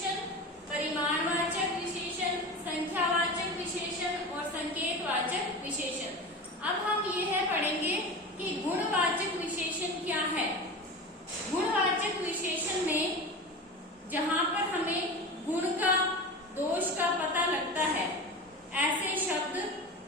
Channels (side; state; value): both; normal; correlation 0.29